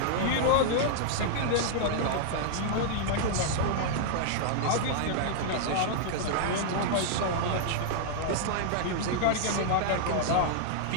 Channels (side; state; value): both; different; correlation -0.01